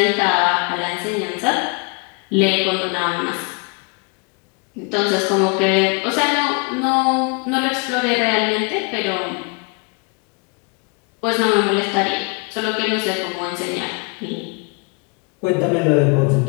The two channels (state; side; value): quieter; right; 32.1 dB